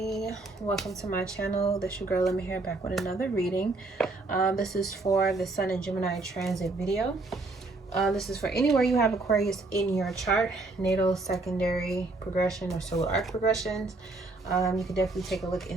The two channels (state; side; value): quieter; left; 3.3 dB